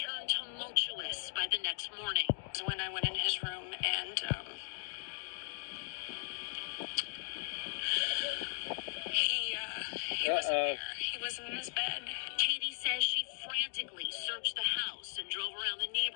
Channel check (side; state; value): right; silent; digital silence